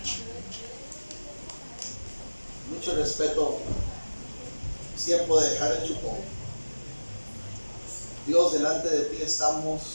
Mucho respeto. Es tiempo de dejar el chupón. Dios, delante de ti estamos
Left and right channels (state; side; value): inverted; both; correlation -1.00